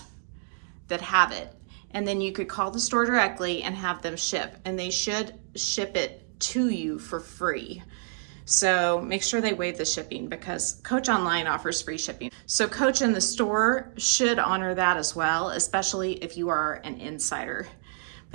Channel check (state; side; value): silent; left; digital silence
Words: that have it. And then you could call the store directly and have them ship, and they should ship it to you for free. So make sure they waive the shipping, because Coach Online offers free shipping. So Coach in the store should honor that as well, especially if you are an insider.